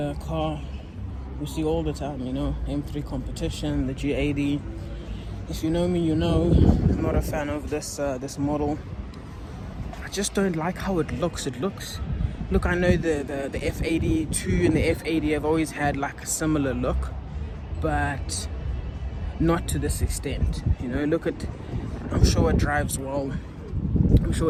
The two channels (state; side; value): identical; both; correlation 1.00